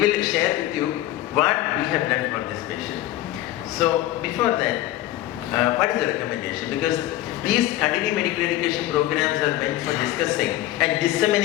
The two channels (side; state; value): right; quieter; 14.9 dB